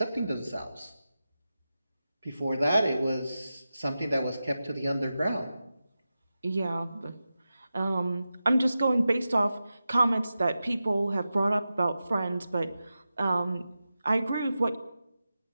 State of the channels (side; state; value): both; inverted; correlation -0.92